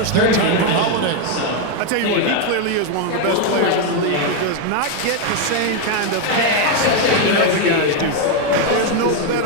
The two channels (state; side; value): different; both; correlation 0.01